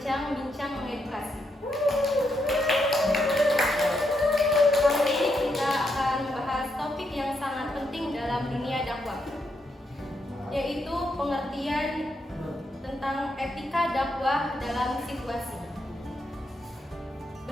mengedukasi. Kali ini kita akan membahas topik yang sangat penting dalam dunia dakwah, yaitu pengertian tentang etika dakwah dalam situasi.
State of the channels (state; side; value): normal; both; correlation 0.80